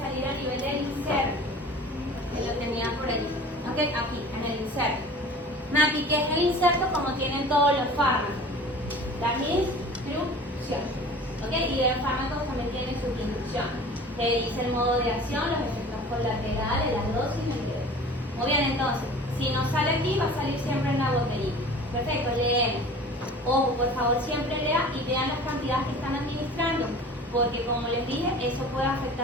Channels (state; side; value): normal; both; correlation 0.42